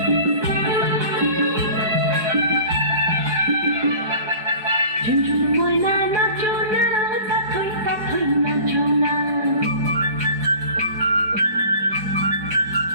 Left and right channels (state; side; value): late; left; 4.8 ms